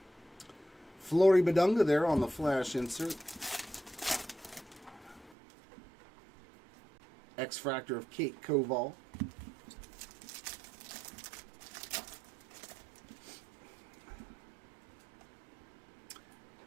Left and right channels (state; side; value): drops out; left; at 5.4 s